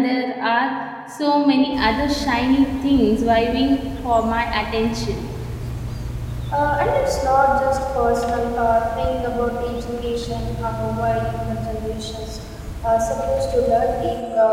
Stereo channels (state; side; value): identical; both; correlation 1.00